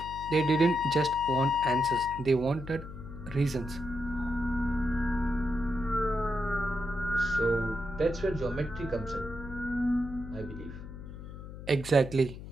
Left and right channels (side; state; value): left; noise; hum, 12 dB below the sound